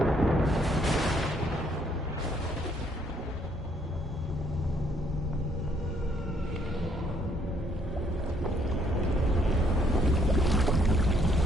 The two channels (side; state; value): both; normal; correlation 0.68